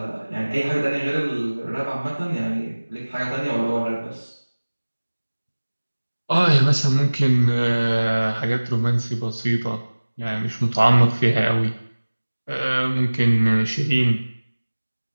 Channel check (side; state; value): both; inverted; correlation -1.00